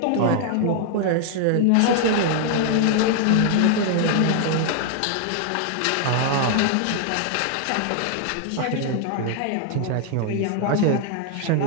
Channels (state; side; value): different; both; correlation 0.00